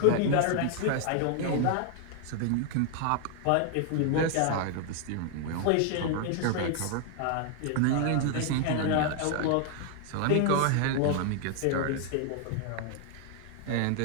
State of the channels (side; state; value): both; different; correlation 0.00